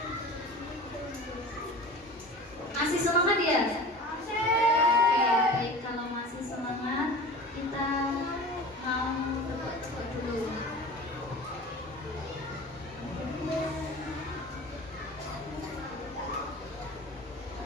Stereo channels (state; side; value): normal; both; correlation 0.37